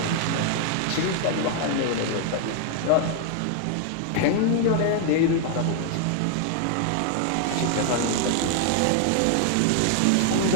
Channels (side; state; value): both; different; correlation 0.00